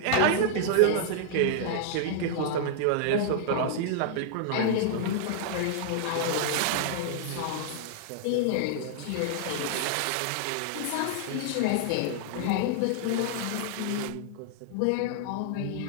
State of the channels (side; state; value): both; different; correlation -0.01